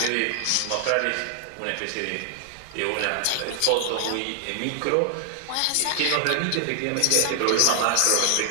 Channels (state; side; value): different; both; correlation 0.00